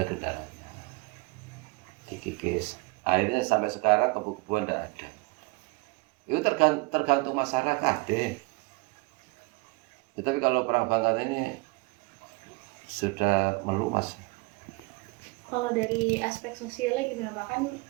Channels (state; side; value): quieter; left; 25.6 dB